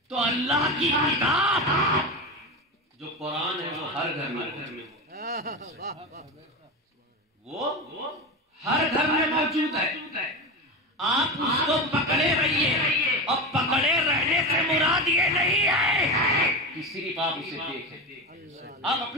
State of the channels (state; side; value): normal; both; correlation 0.22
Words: تو اللہ کی کتاب جو قرآن ہے وہ ہر گھر میں وہ ہر گھر میں موجود ہے. آپ اس کو پکڑے رہیے، اور پکڑے رہنے سے مراد یہ نہیں ہے کہ صرف آپ اسے دیکھیں، آپ